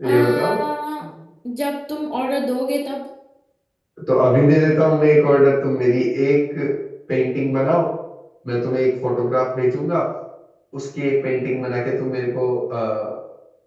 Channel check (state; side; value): identical; both; correlation 1.00